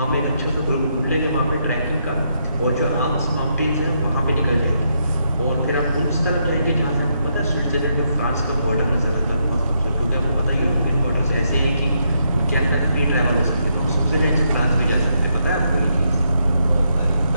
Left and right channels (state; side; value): inverted; both; correlation -0.78